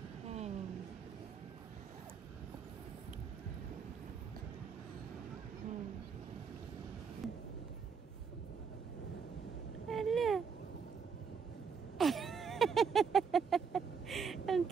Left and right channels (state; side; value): quieter; left; 6.1 dB